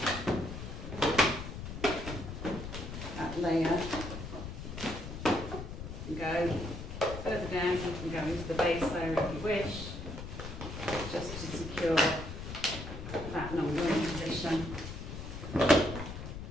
that layer and go further down. You can go into the base layer if you wish, just to secure that number in position.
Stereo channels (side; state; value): left; noise; rumble, 8 dB below the sound